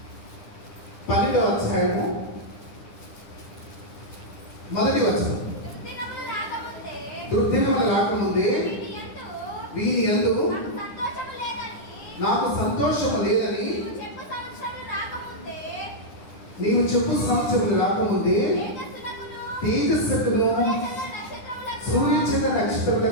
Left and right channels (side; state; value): right; late; 9.8 ms